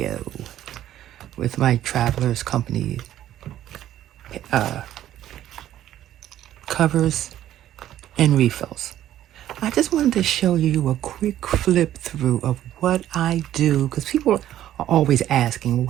with my Travelers Company covers and refills. I just wanted to show you a quick flip through of what I do, because people are always asking, well,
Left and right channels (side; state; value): left; quieter; 12.3 dB